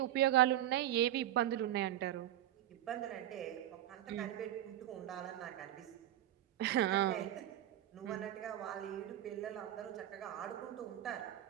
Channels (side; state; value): left; quieter; 12.8 dB